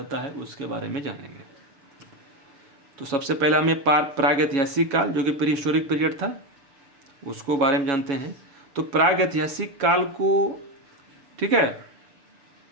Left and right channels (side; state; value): left; late; 7.2 ms